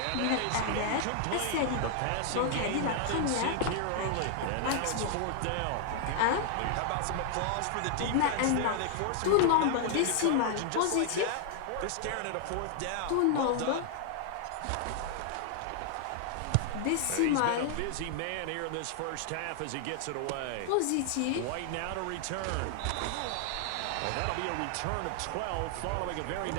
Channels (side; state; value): both; different; correlation 0.00